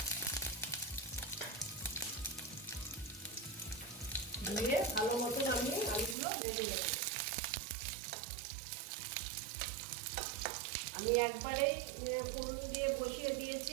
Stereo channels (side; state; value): left; drops out; at 6.2 s